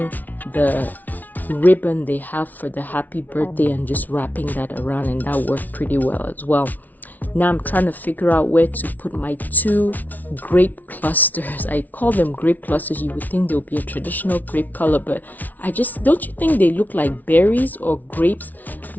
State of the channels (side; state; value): right; late; 0.078 ms